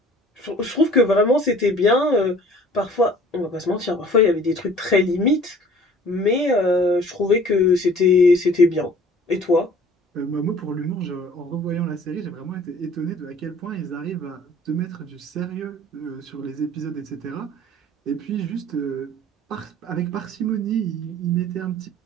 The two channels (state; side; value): normal; both; correlation 0.50